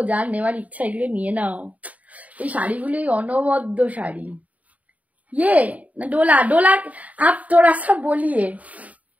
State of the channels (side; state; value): left; late; 0.071 ms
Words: যার নেওয়ার ইচ্ছা এগুলো নিয়ে নাও, এই শাড়িগুলোই অনবদ্য শাড়ি। ये ना डोला, डोला आप थोड़ा सा बोलिए,